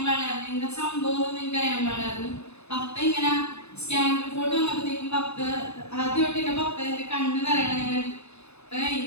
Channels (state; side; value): late; right; 0.80 ms